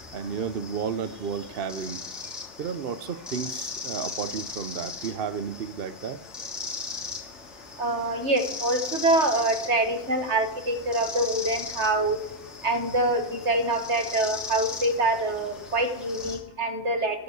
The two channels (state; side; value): normal; both; correlation -0.02